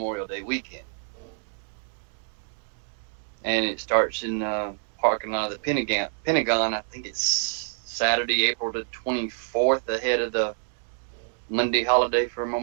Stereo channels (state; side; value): silent; left; digital silence